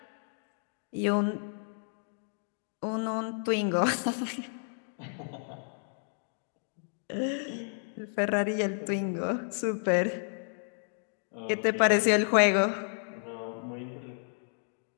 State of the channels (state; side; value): silent; right; digital silence